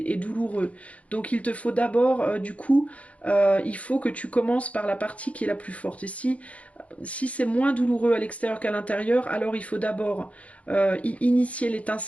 douloureux. Donc il te faut d'abord, du coup, il faut que tu commences par la partie qui est la plus forte. Et si c'est moins douloureux à l'extérieur qu'à l'intérieur, alors il faut d'abord initier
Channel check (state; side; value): late; right; 0.066 ms